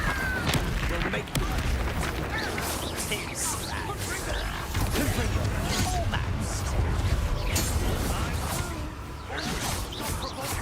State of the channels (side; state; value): both; identical; correlation 1.00